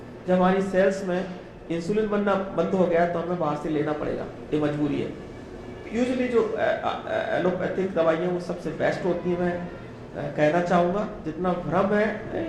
जब हमारी सेल्स में इंसुलिन बनना बंद हो गया तो हमें बाहर से लेना पड़ेगा, ये मजबूरी है। यूजुअली जो एलोपैथिक दवाइयाँ वो सबसे बेस्ट होती हैं। मैं कहना चाहूँगा जितना भ्रम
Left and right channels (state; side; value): identical; both; correlation 1.00